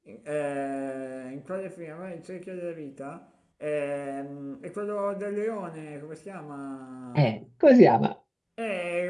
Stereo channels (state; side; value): identical; both; correlation 1.00